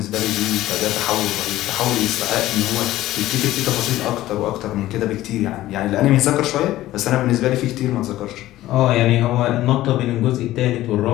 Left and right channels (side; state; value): right; quieter; 15.2 dB